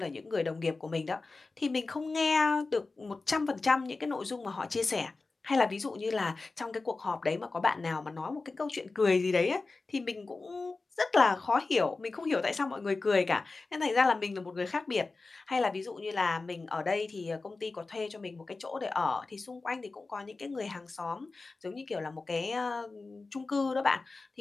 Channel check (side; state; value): right; quieter; 3.7 dB